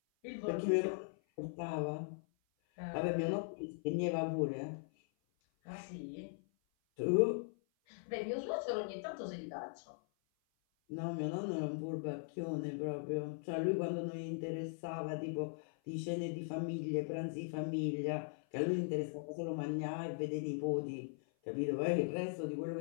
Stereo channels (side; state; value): right; silent; 51 dB below the other